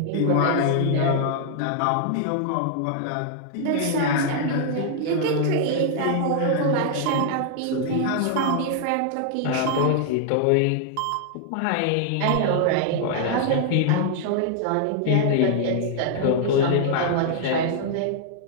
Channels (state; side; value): different; both; correlation -0.01